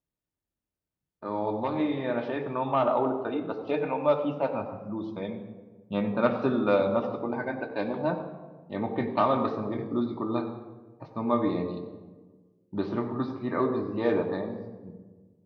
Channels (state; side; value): identical; both; correlation 1.00